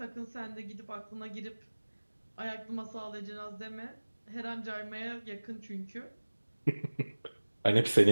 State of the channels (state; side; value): inverted; both; correlation -1.00